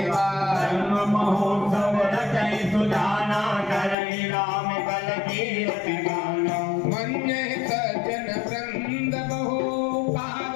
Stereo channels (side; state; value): right; drops out; at 4.0 s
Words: जन्म महोत्सव रचै सुजाना करई राम कल कीर्ति गाना मन्ये सज्जन वृंद बहु